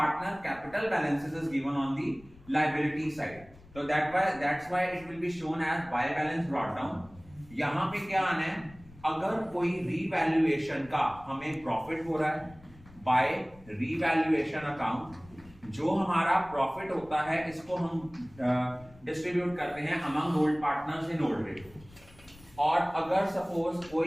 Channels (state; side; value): noise; left; rumble, 23 dB below the sound